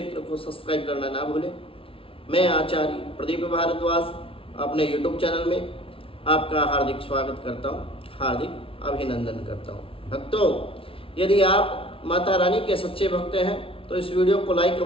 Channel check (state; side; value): late; right; 0.26 ms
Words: को सब्सक्राइब करना ना भूलें। मैं आचार्य प्रदीप भारद्वाज अपने YouTube चैनल में आपका हार्दिक स्वागत करता हूँ, हार्दिक अभिनंदन करता हूँ। भक्तों, यदि आप माता रानी के सच्चे भक्त हैं तो इस वीडियो को लाइक